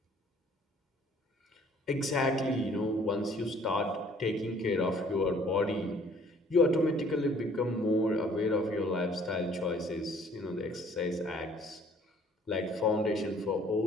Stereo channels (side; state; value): both; normal; correlation 0.57